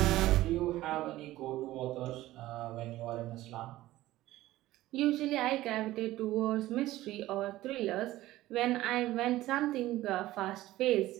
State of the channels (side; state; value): left; quieter; 16.2 dB